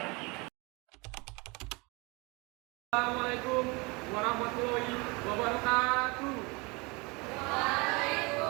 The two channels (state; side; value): quieter; left; 27.1 dB